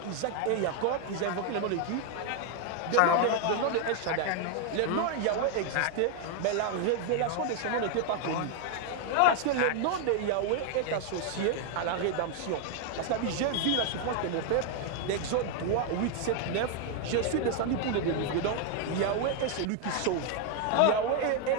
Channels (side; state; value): both; different; correlation 0.00